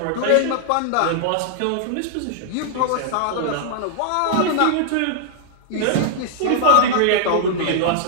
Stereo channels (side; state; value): both; different; correlation -0.01